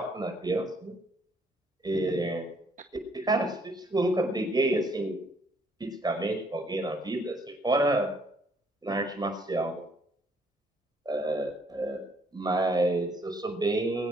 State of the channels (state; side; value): normal; both; correlation 0.66